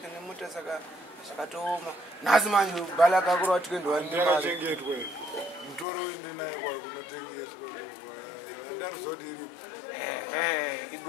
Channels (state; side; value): drops out; right; at 5.9 s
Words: nemota saka zvakatoma nhasi manje bhala kakura watikendowandimachengetwe mutoro wendinaye kwakunotengeswa ndarizoti iri